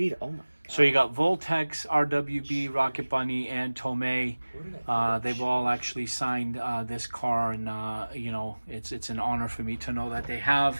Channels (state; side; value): inverted; both; correlation -1.00